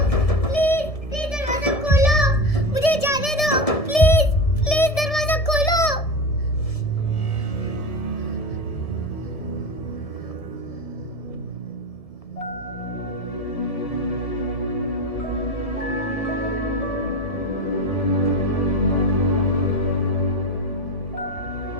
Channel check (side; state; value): right; late; 1.7 ms